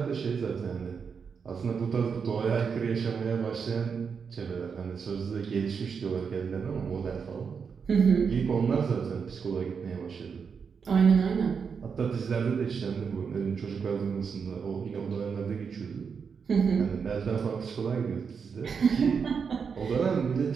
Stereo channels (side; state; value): left; quieter; 6.1 dB